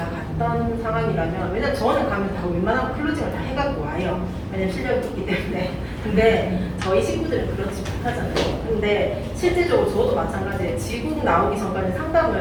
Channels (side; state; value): both; identical; correlation 1.00